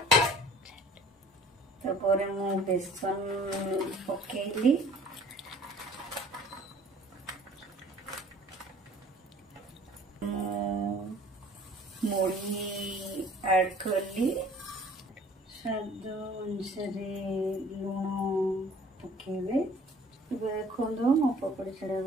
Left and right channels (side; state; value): both; normal; correlation 0.51